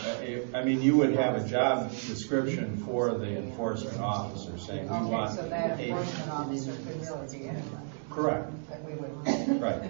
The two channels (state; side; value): silent; left; 57 dB below the other